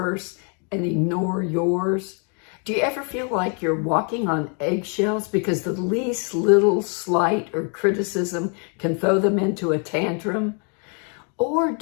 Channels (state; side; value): quieter; right; 39.3 dB